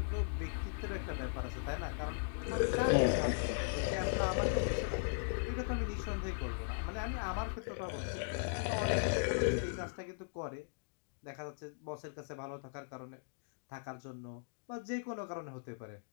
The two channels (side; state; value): right; silent; digital silence